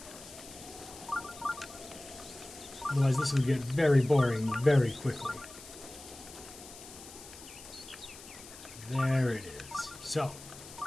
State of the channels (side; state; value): left; noise; hiss, 16 dB below the sound